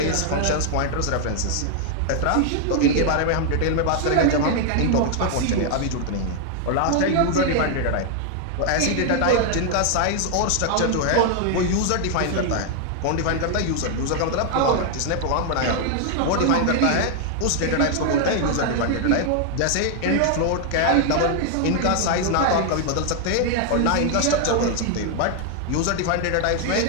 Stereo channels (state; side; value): different; both; correlation 0.00